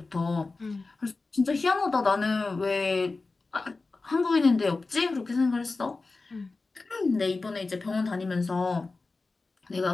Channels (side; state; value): right; quieter; 3.7 dB